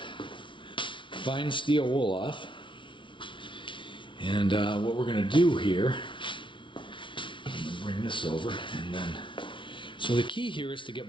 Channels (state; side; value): late; right; 0.24 ms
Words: fine steel wool off. And what we're going to do here, I'm going to bring this over, and then, so the key here is to get